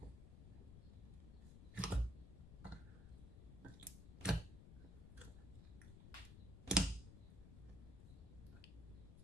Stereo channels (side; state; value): left; noise; rumble, 12 dB below the sound